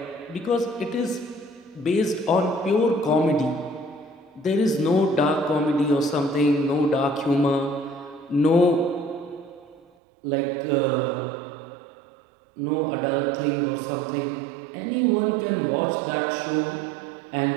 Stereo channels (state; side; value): drops out; left; at 9.9 s